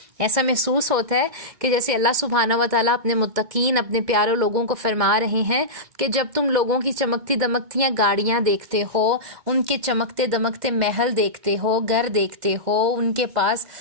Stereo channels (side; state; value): left; late; 2.1 ms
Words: ایسا محسوس ہوتا ہے کہ جیسے اللہ سبحانہ و تعالیٰ اپنے متقین، اپنے پیارے لوگوں کو فرما رہے ہیں کہ جب تم لوگوں کی چمکتی دمکتیاں گاڑیاں دیکھتے ہو، ان کے چمکتے دمکتے محل دیکھتے ہو، گھر دیکھتے ہو، ان کے پاس